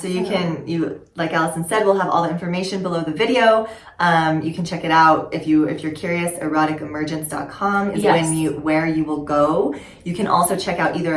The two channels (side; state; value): both; identical; correlation 1.00